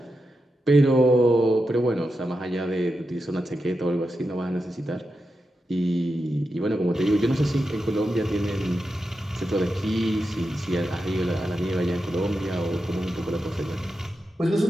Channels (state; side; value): normal; both; correlation 0.88